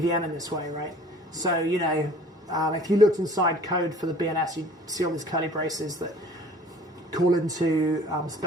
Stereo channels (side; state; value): both; normal; correlation 0.49